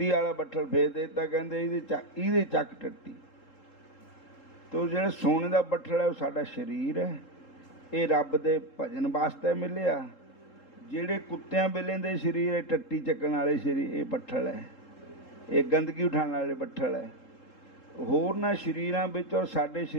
ਵਾਲਾ ਬੱਠਲ ਫੇਰ ਦੇ ਦਿੱਤਾ। ਕਹਿੰਦੇ ਇਹਦੇ ਚੱਕ ਟੱਟੀ। ਤੋ ਜਿਹੜਾ ਸੋਨੇ ਦਾ ਬੱਠਲ ਹੈ ਉਹ ਸਾਡਾ ਸਰੀਰ ਹੈ, ਇਹ ਰੱਬ ਦੇ ਭਜਨ ਵਾਸਤੇ ਮਿਲਿਆ। ਜਿਹੜੇ ਕੁੱਤਿਆਂ ਬਿੱਲਿਆਂ ਦੇ ਸਰੀਰ ਹੈ, ਟੱਟੀ ਚੱਕਣ ਵਾਲੇ ਸਰੀਰ, ਇਹ ਬੱਠਲ ਹੈ, ਇਹ ਗੰਦਗੀ ਉਠਾਉਣ ਵਾਲੇ ਬੱਠਲ ਹੈ। ਹੋਰਨਾਂ ਸਰੀਰਾਂ ਵਿੱਚ ਔਰ ਸਾਡੇ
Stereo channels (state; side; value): late; right; 3.7 ms